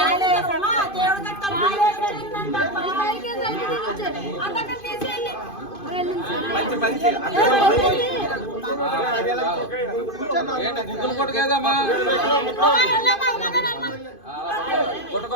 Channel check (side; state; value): right; late; 2.5 ms